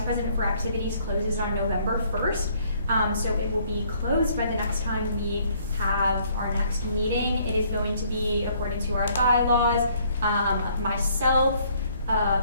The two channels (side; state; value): both; inverted; correlation -0.64